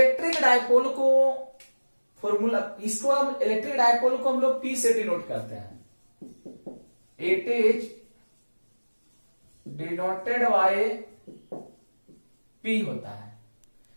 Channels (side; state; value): both; inverted; correlation -1.00